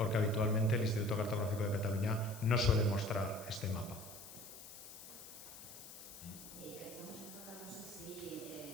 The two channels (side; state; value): left; noise; hiss, 14 dB below the sound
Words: habitualmente el Instituto Cartográfico de Cataluña no suele mostrar este mapa. Estamos hablando, no sé si